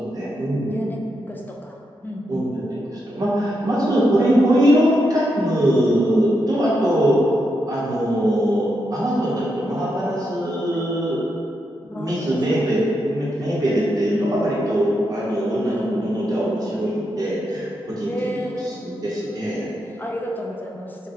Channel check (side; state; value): both; normal; correlation 0.83